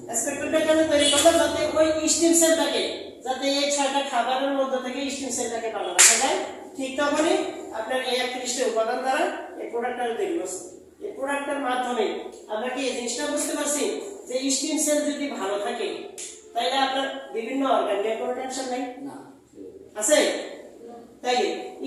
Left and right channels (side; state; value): both; identical; correlation 1.00